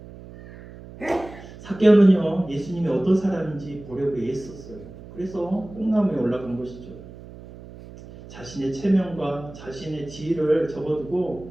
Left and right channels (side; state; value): right; noise; hum, 16 dB below the sound